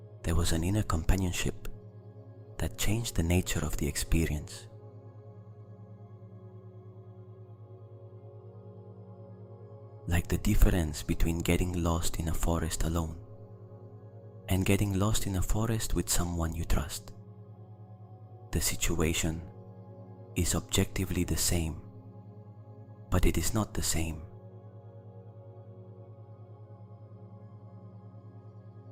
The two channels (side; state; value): both; identical; correlation 1.00